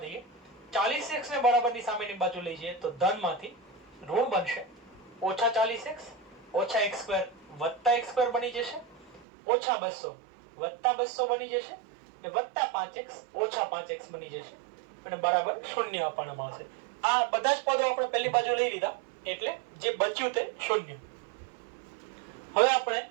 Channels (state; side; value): drops out; left; at 9.2 s